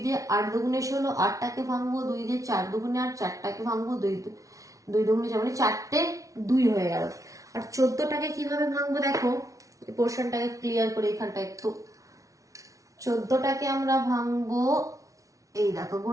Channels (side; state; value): left; late; 0.16 ms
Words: দিয়ে 8 দুগুণে 16, 8টাকে ভাঙবো 2 দিয়ে, 4 দুগুণে 8, 4টাকে ভাঙবো 2 দুগুণে 4, মানে 4টে 2 হয়ে গেল। আর 14টাকে কিভাবে ভাঙবো দেখো, এই পোর্শনটাকে ক্লিয়ার করে এখানটা একটু। 14টাকে আমরা ভাঙবো, এই দেখো